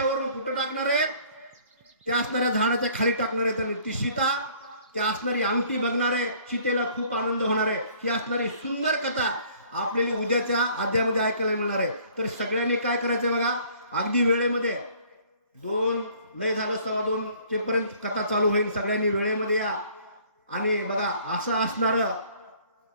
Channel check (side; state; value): both; inverted; correlation -0.56